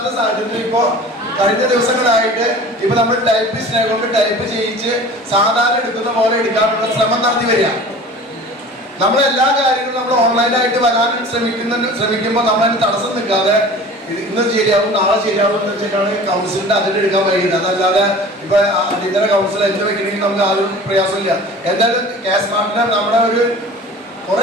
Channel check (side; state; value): both; normal; correlation 0.41